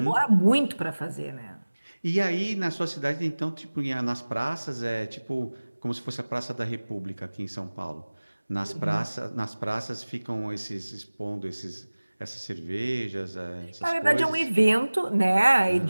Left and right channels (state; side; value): inverted; both; correlation -1.00